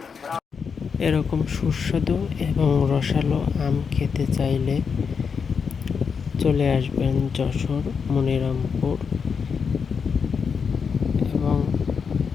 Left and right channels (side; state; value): right; quieter; 6.0 dB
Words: এরকম সুস্বাদু এবং রসালো আম খেতে চাইলে চলে আসবেন যশোর মনিরামপুর এবং